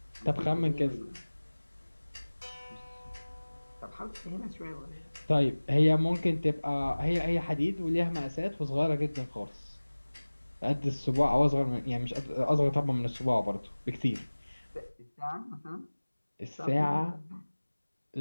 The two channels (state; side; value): inverted; both; correlation -1.00